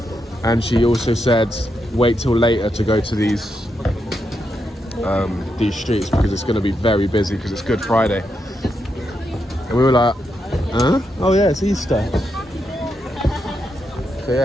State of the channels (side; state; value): both; normal; correlation 0.83